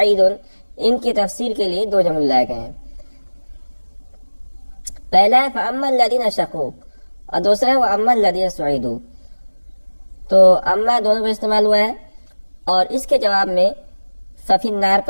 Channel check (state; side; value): inverted; both; correlation -1.00